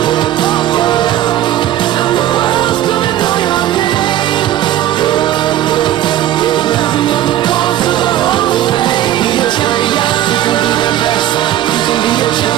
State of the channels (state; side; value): quieter; left; 12.8 dB